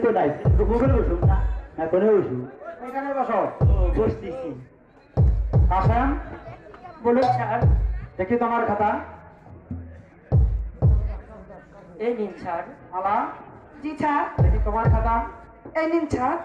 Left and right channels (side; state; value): both; identical; correlation 1.00